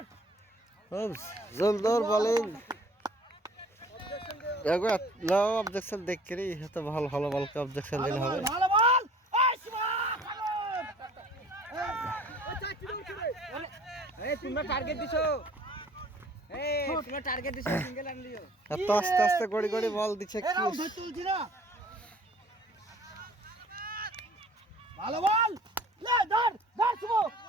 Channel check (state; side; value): normal; both; correlation 0.51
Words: জোরদার বোলিং। অবজেকশন দেখ করি তো ভালো ভালো বলকে অবজেকশন দিলে হবে। এত আস্তে আস্তে গড়ি গড়ি বল দিচ্ছে কি ভালো বল, লে ধর ধর শুভ,